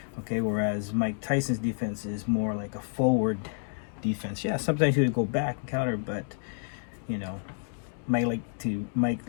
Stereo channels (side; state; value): right; silent; digital silence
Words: Okay, whereas Mike Tyson's defense is more like a forward defense. Yeah, sometimes he would go back and counter, but Mike